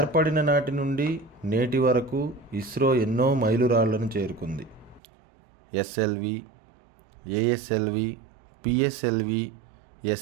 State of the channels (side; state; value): left; drops out; at 5.0 s